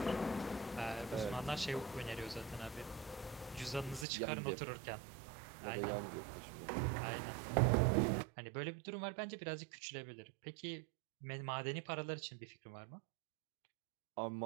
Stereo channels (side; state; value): left; drops out; at 4.0 s